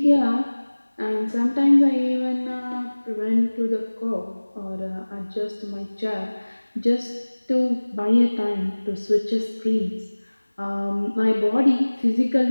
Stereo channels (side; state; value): both; inverted; correlation -1.00